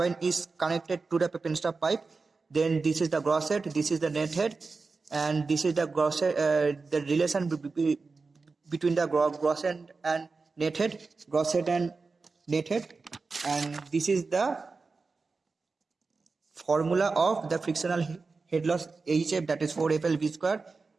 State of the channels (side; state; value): left; quieter; 4.2 dB